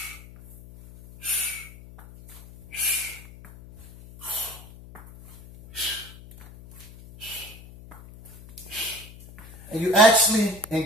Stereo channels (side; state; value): left; noise; hum, 19 dB below the sound